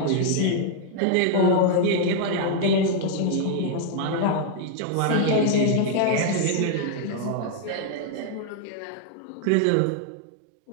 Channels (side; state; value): both; different; correlation 0.00